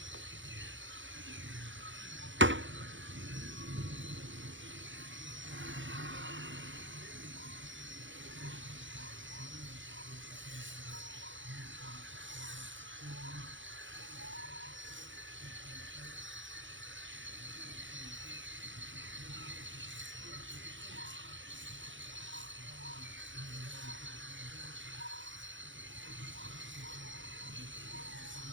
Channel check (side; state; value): left; late; 0.55 ms